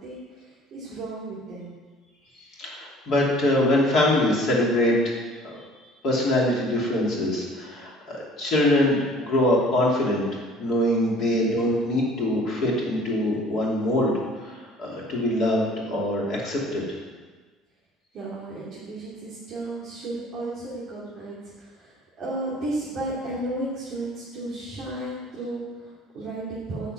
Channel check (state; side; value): normal; both; correlation 0.51